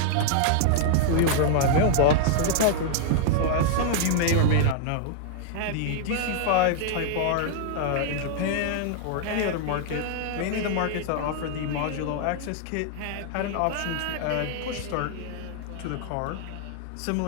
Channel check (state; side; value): different; both; correlation -0.01